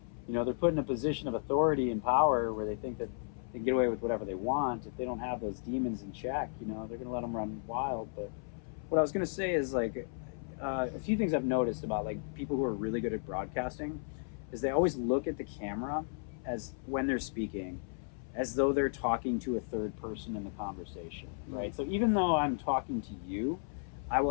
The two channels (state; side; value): silent; right; 55 dB below the other